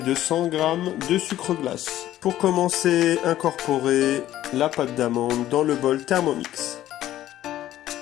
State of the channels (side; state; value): right; quieter; 13.4 dB